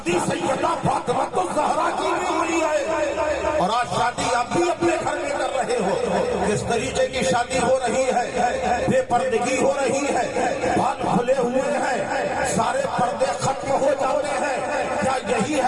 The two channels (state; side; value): identical; both; correlation 1.00